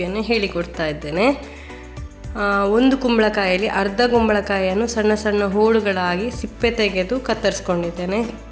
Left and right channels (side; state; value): both; identical; correlation 1.00